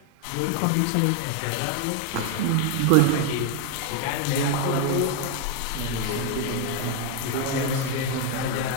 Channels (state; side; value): different; both; correlation 0.01